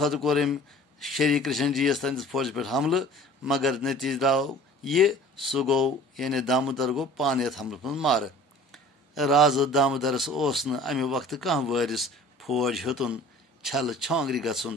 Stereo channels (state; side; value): normal; both; correlation 0.46